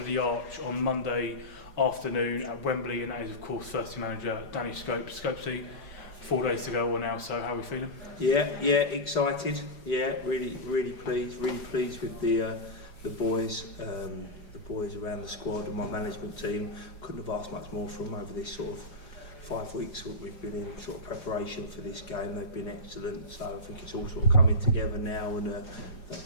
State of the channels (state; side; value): late; right; 4.9 ms